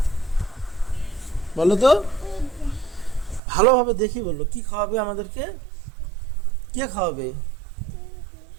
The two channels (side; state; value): left; drops out; at 3.4 s